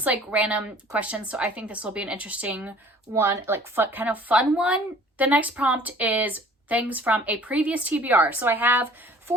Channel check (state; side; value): normal; both; correlation 0.51